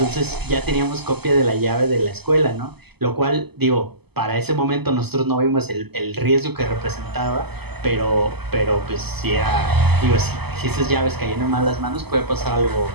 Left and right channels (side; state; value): left; late; 0.97 ms